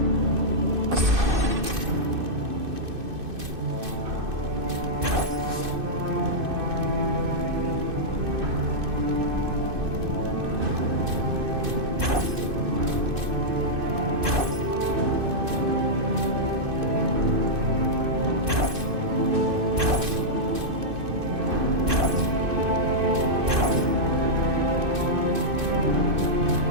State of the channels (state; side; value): late; left; 2.6 ms